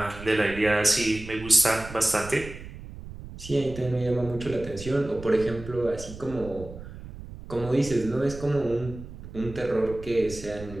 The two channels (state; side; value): noise; right; rumble, 13 dB below the sound